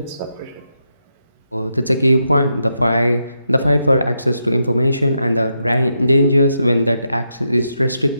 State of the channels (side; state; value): both; inverted; correlation -0.83